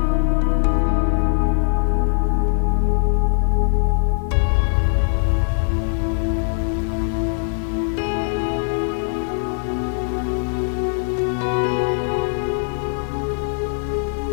Semula adalah penerbang pesawat bom Predator Persia ALAS B-24 Liberator. Setelah berhenti dinas militer, ia menjadi penerbang perusahaan penerbangan Filipina.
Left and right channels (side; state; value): right; silent; digital silence